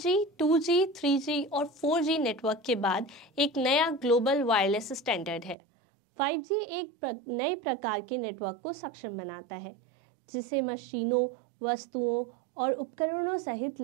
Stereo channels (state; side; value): drops out; left; at 5.6 s